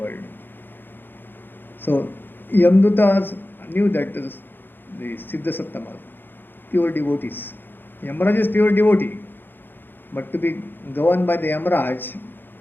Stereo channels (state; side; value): late; right; 0.097 ms